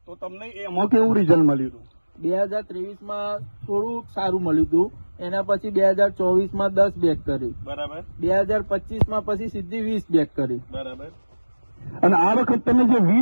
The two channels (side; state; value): both; inverted; correlation -1.00